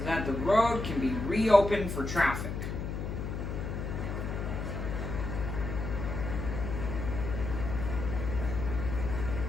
that the road can be reopened for traffic.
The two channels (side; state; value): left; noise; hum, 4 dB below the sound